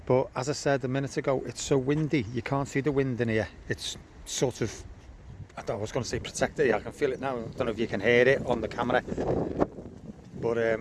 but as I said a minute ago, it's so windy, you can't see the wind in here. It's sort of, I was going to say protected, I can feel it now. I don't know if you can hear it on the camera, but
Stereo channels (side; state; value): both; identical; correlation 1.00